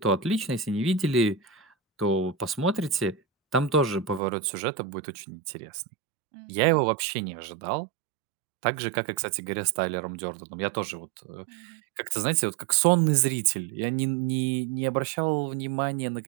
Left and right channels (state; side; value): drops out; left; at 4.2 s